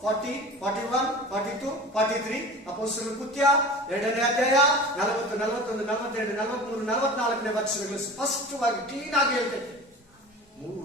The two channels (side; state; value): both; normal; correlation 0.36